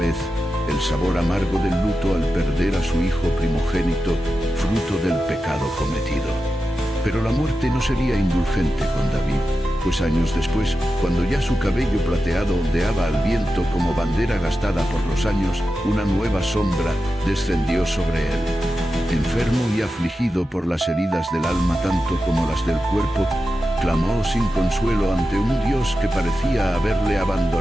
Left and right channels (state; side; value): normal; both; correlation 0.91